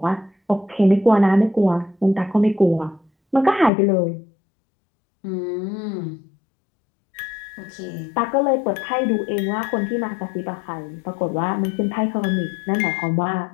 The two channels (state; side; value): drops out; right; at 3.7 s